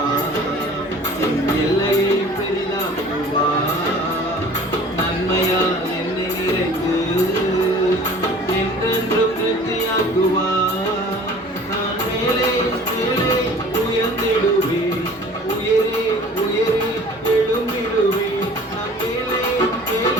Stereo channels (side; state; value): both; normal; correlation 0.46